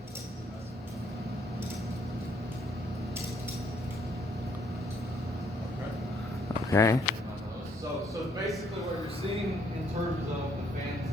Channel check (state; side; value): normal; both; correlation 0.69